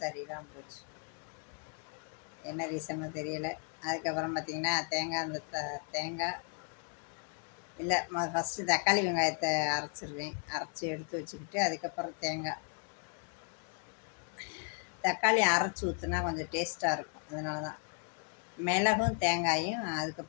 சரியில்லாமல் போச்சு. என்ன ரீசனோ தெரியலை. அதுக்கப்புறம் பார்த்திங்கன்னா தேங்காய் இல்லை, ஃபஸ்ட்டு தக்காளி வெங்காயத்தை அரைச்சிடுவேன். அரைச்சி எடுத்து வச்சுக்கிட்டு அதுக்கப்புறம் தக்காளி அரைச்சி ஊற்றுனா கொஞ்சம் டேஸ்ட்டாக இருக்கும். அதனால தான் மிளகும் தேங்காயும்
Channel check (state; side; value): quieter; right; 39.8 dB